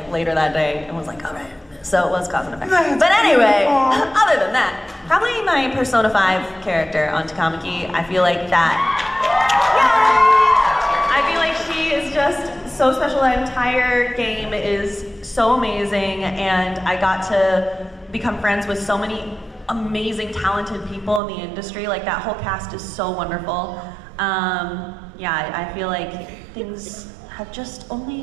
later that day and was like, all right. So it was cause and effect. But anyway, other than that, probably my Persona 5 character on Takamaki. I feel like that, yay! I feel like she is just so special. That entire game is so amazing, and I got to become friends with so many amazing, talented people in the industry. Like, that whole cast is so wonderful. Yeah, I feel like things have just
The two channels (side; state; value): left; drops out; at 21.2 s